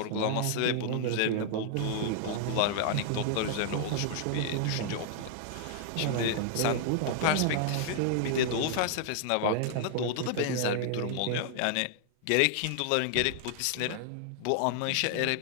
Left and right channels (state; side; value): different; both; correlation -0.01